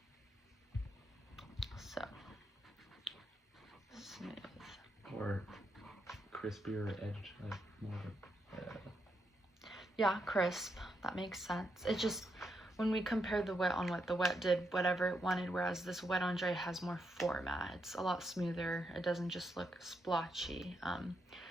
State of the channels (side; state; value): both; normal; correlation 0.82